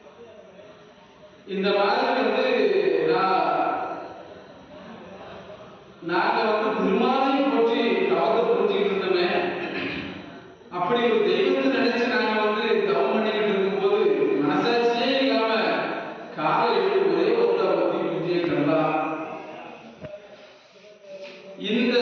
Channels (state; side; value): identical; both; correlation 1.00